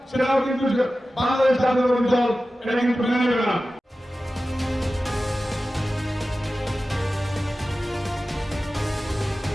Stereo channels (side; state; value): both; normal; correlation 0.95